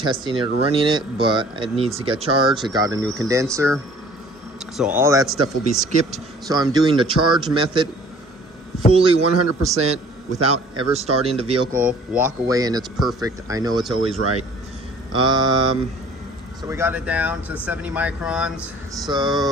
it or running it, but it needs to get charged. It got a new condenser, so all that stuff will be skipped. So I'm doing the charge method fully 100% without ever starting the vehicle. Walk away and it's perfect. I know it's always right. So we got it down to 70 microns.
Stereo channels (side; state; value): both; normal; correlation 0.52